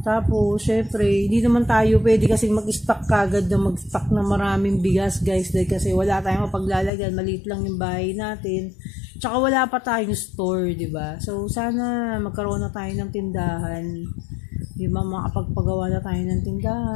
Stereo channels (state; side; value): drops out; right; at 6.9 s